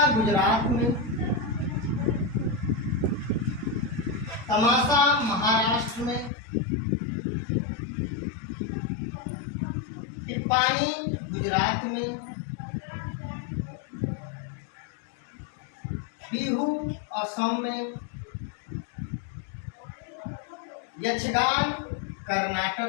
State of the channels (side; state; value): right; drops out; at 6.3 s